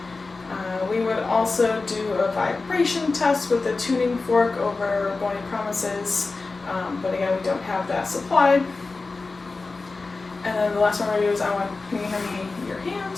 We would also do a vibration test with a tuning fork over bony promises, but again, we don't have that supplied. And then the last one we're going to do is can you hand me your hand?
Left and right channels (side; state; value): right; quieter; 3.8 dB